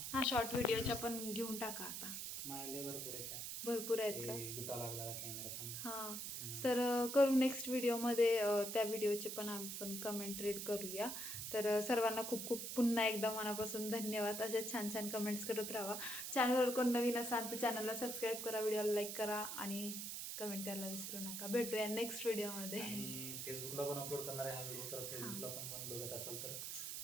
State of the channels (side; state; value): right; noise; hiss, 5 dB below the sound